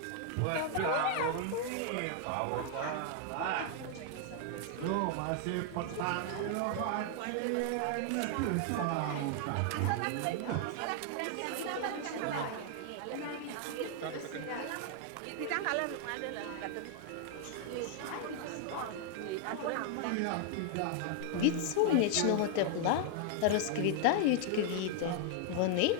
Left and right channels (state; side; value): different; both; correlation 0.00